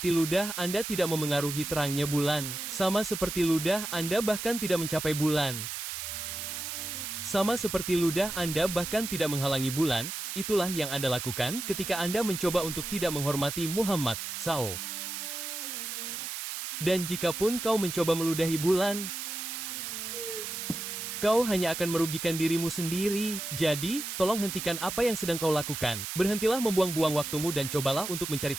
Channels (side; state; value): right; noise; hiss, 5 dB below the sound